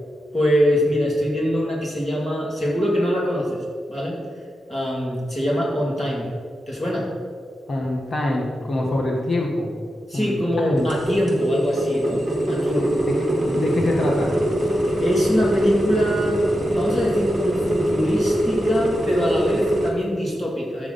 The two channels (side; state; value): both; normal; correlation 0.88